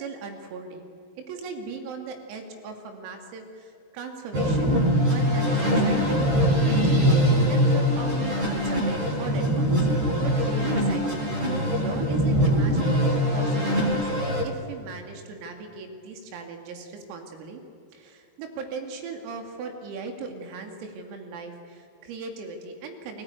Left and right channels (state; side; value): late; left; 13 ms